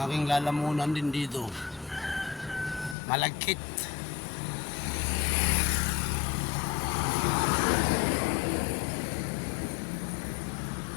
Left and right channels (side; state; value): right; drops out; at 3.0 s